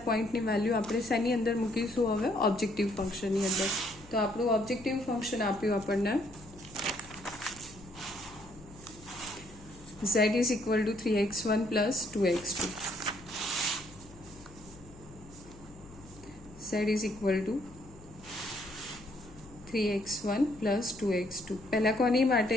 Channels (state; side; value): noise; left; hum, 20 dB below the sound